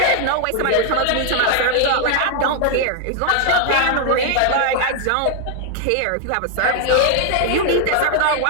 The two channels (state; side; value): different; both; correlation 0.00